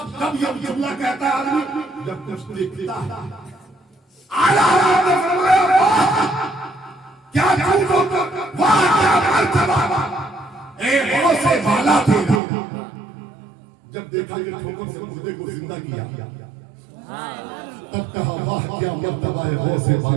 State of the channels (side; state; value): left; drops out; at 12.4 s